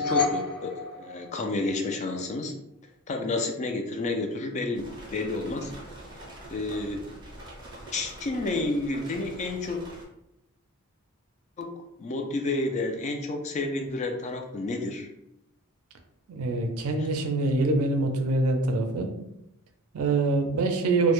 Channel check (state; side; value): normal; both; correlation 0.36